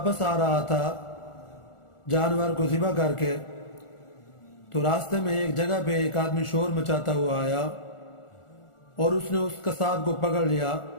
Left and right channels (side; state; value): right; late; 1.4 ms